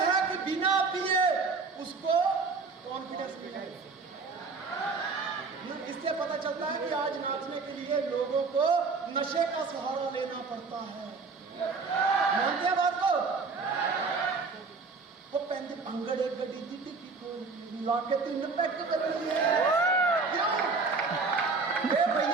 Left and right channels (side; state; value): left; quieter; 4.4 dB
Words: है कि बिना पिए उसको कॉन्फिडेंस नहीं है। इससे पता चलता है कि आज नाचने के लिए लोगों को नशे का सहारा लेना पड़ता है। मानते हैं बात को? वो पैंती अंगड़े गड्डी दी ला के 3 पैक कर लिए। क्यों?